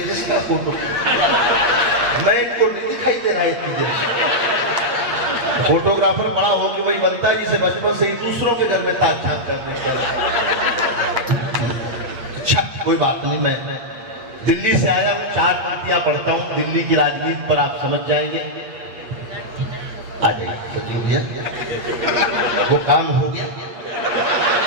जिसका फोटो मैं इनको नहीं दिखाई दे रहा है इतनी देर से। फोटोग्राफर बड़ा हो कि वही बनता है जिसे बचपन से ही दूसरों के घर में ताक झाक करने। अच्छा कोई बात नहीं, मैं दिल्ली से आया हूँ, 4 पंक्तियां पढ़ता हूँ, दिल्ली की राजनीति पर आप समझ जाएंगे। आ जाइए सचिव भैया, वो काम हो गया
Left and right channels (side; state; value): left; late; 8.6 ms